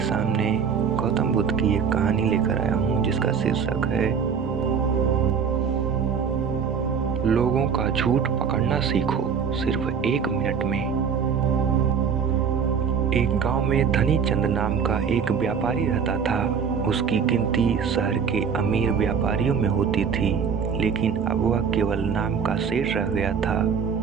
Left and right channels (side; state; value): left; quieter; 6.6 dB